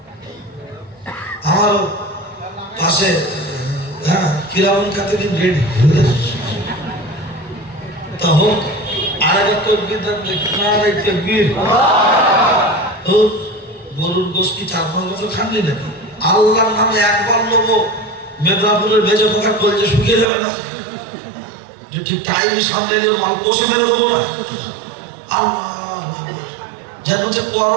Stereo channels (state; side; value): drops out; left; at 20.2 s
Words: আমার পাশে হ্যাঁ কিরামুল কাতিবিন রেডি তা হোক। আরেকবার তকবীর দেন, নারে তাকবীর। ও গরুর গোশত কি 4-5 বছর খাননি নাকি? আল্লাহর নামে একবার নেবো, মেদিনীপুরের ভেজে পোকা কলজে শুকিয়ে যাবে না? যে ঠিক টাইম সামনে নিয়ে মাল কষে মেরে দেবো না? আল্লাহ যেন যে